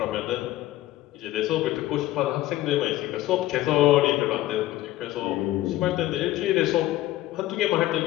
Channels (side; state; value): right; quieter; 15.5 dB